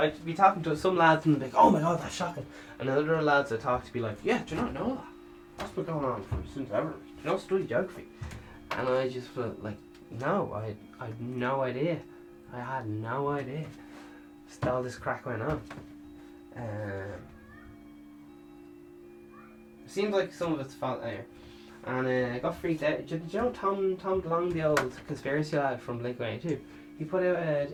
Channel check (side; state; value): both; identical; correlation 1.00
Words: be talking to some lads and be like, oh my god, that's shocking. And then other lads I talk to be like, yeah, do you not know that? That's been going on since ever. Do you not study geography? And I just felt like, no, I had no idea. I had no idea. Just all this crack went on. It seems like some of it's fault there. And I got freaked out. Did you know Tom DeLonge, the old conspiracy lad from Blink-182? He put out